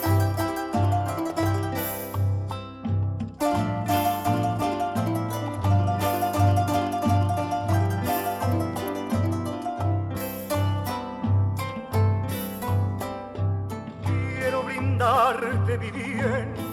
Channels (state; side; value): identical; both; correlation 1.00